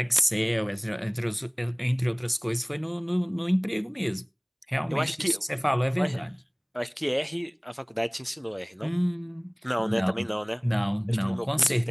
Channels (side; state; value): both; identical; correlation 1.00